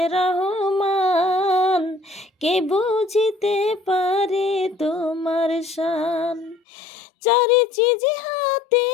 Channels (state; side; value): drops out; right; at 6.6 s